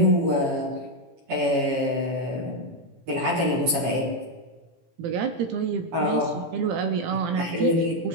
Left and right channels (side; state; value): left; late; 18 ms